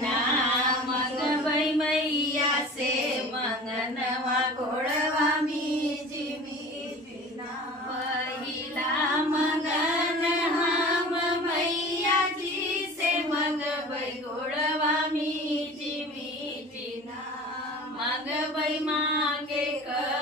मंगबाई मैया से मंगनवा घोड़वा जीना पहिला मंगन हम मैया जी से मंगबाई घोड़वा जीना मंगबाई मांगे क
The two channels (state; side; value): normal; both; correlation 0.40